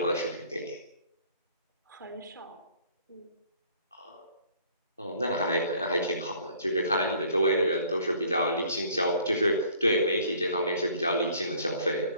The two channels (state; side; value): inverted; both; correlation -0.55